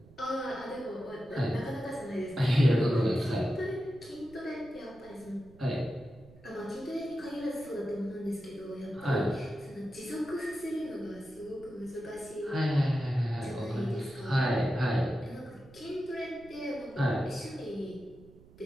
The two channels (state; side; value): noise; right; rumble, 22 dB below the sound